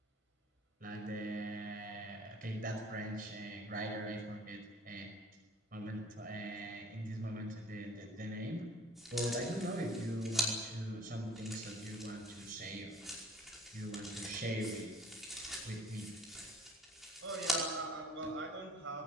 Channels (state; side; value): normal; both; correlation 0.50